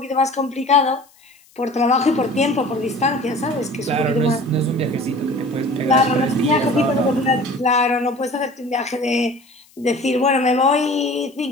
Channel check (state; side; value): noise; left; hiss, 30 dB below the sound